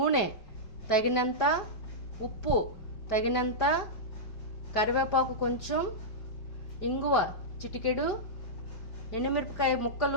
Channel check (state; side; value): late; right; 5.0 ms